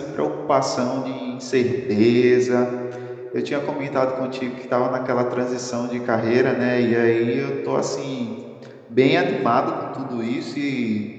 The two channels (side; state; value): both; identical; correlation 1.00